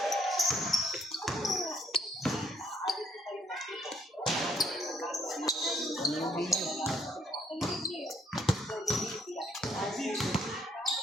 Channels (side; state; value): both; normal; correlation 0.68